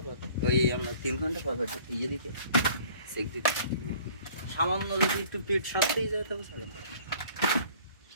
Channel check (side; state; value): both; inverted; correlation -0.52